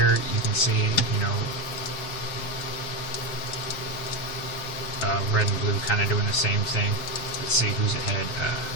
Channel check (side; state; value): right; late; 7.6 ms